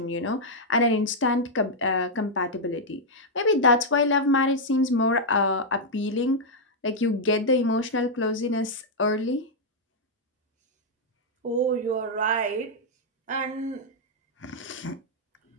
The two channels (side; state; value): both; normal; correlation -0.04